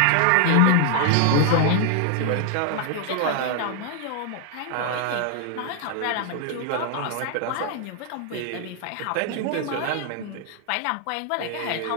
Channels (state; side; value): different; both; correlation 0.00